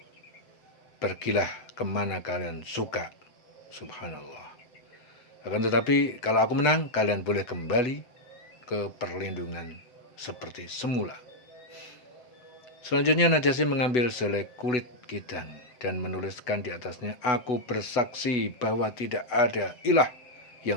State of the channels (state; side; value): late; right; 8.1 ms